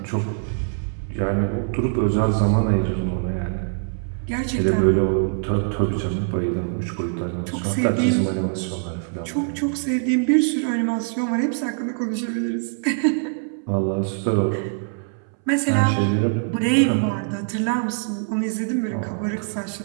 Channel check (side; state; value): left; silent; 63 dB below the other